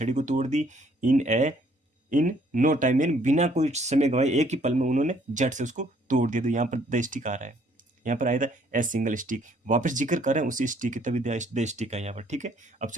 को तोड़ दी, इन नो टाइम, इन, बिना कोई समय गवाए, एक ही पल में उन्होंने झट से उसको तोड़ दिया। तो यहाँ पर द स्टिक आ रहा है, यहाँ पर आया था ए सिंगल स्टिक, वापस जिक्र कर रहे हैं उसी स्टिक, तभी द स्टिक है यहाँ पर, ठीक है। अब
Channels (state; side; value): normal; both; correlation 0.64